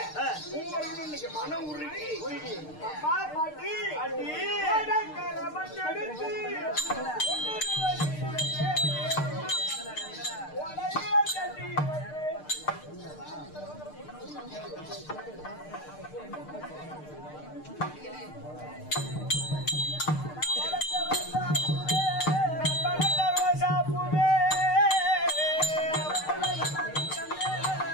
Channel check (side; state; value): right; late; 6.6 ms